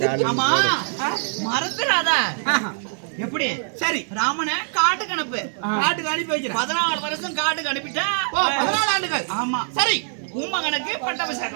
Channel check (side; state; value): left; silent; 63 dB below the other